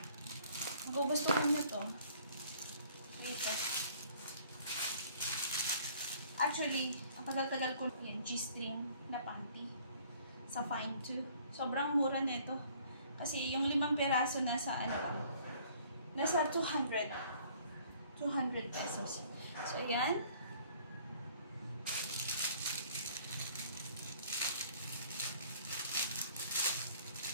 Magugustuhan nyo to. Wait. Actually, ang tagal-tagal ko yan, G-string na panty. Sa Fine 2. Sobrang mura nito. Kasi yung 5 peraso nasa nasa 200 pesos. So, ayan.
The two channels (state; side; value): inverted; both; correlation -0.57